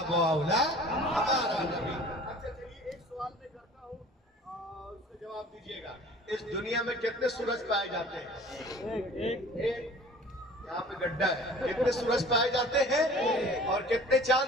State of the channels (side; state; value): both; normal; correlation 0.46